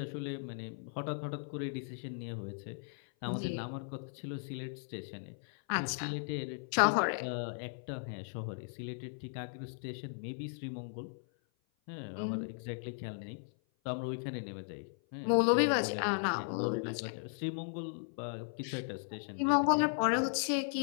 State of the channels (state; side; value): silent; right; 53 dB below the other